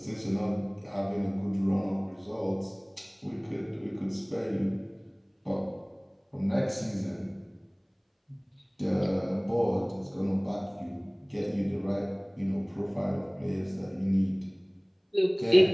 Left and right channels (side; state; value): both; identical; correlation 1.00